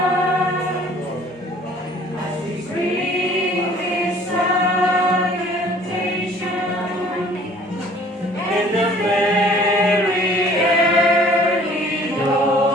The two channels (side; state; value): both; normal; correlation 0.53